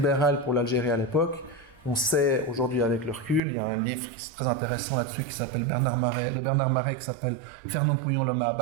pour l'Algérie à l'époque. On sait aujourd'hui avec le recul, il y a un livre qui est très intéressant là-dessus qui s'appelle de Bernard Marais, qui s'appelle Fernand Pouillon, l'homme à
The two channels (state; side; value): drops out; left; at 3.4 s